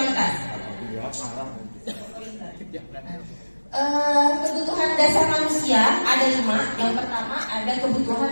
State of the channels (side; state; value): both; inverted; correlation -1.00